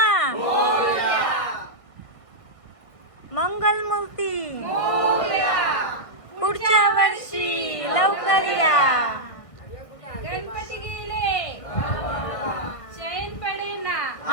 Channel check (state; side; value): late; right; 1.6 ms